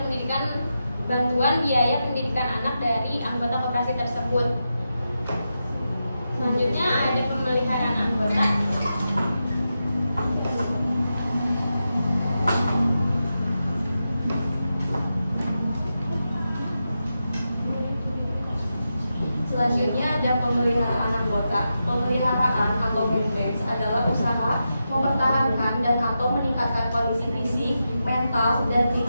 biaya pendidikan anak dari anggota koperasi tersebut. Selanjutnya ada pemeliharaan anggota. Selanjutnya ada pemeliharaan anggota. Pemeliharaan atau maintenance adalah usaha mempertahankan dan atau meningkatkan kondisi fisik, mental, dan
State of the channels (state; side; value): inverted; both; correlation -0.89